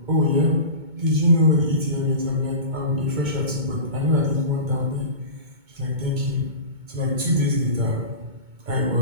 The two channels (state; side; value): late; left; 2.2 ms